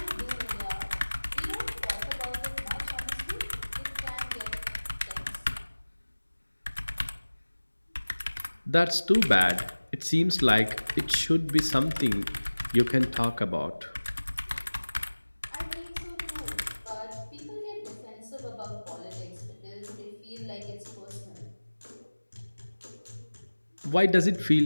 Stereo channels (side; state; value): both; inverted; correlation -1.00